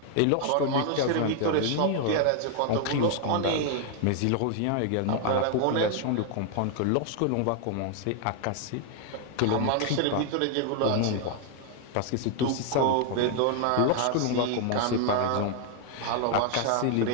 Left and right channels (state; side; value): different; both; correlation 0.00